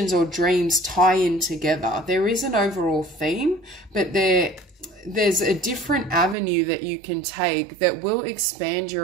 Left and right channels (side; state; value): left; drops out; at 6.4 s